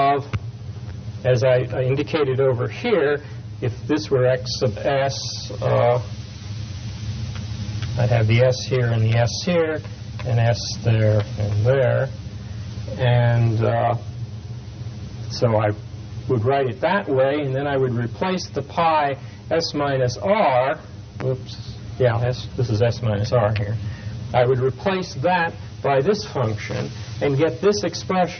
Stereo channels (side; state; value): both; identical; correlation 1.00